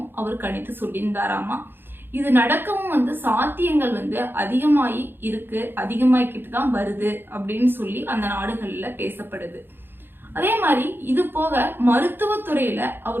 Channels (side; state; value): left; late; 0.10 ms